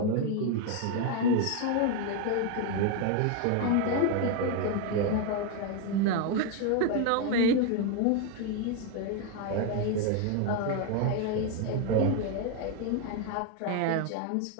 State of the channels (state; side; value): different; both; correlation 0.01